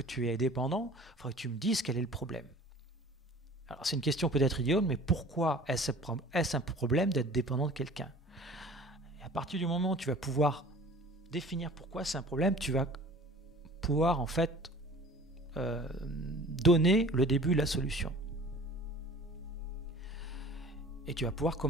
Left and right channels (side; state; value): both; normal; correlation 0.45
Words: tu es dépendant, il faudrait que tu me dises quel est le problème. Alors c'est une question peut-être idiote, mais pourquoi est-ce un problème d'être dépendant de quelqu'un? Et à partir du moment où tu vas pouvoir définir pourquoi c'est un problème, tu vas pouvoir en fait donner le début de la solution. Et tu vas pouvoir